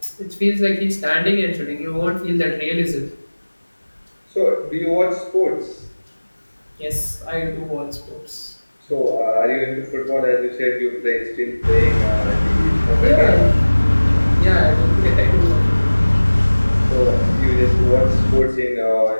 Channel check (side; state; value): both; inverted; correlation -1.00